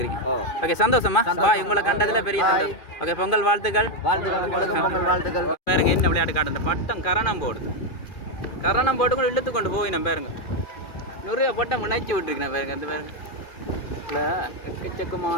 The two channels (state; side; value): late; right; 2.4 ms